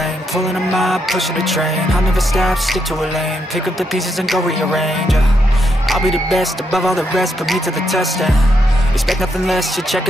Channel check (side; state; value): both; normal; correlation 0.80